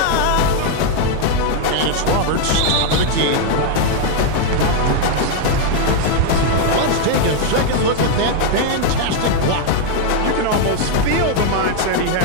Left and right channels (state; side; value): different; both; correlation 0.00